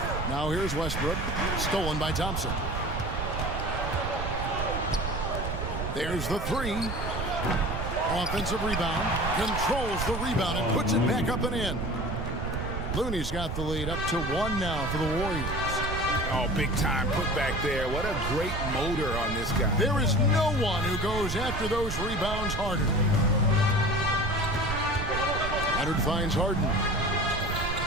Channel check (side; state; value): right; noise; rumble, 4 dB below the sound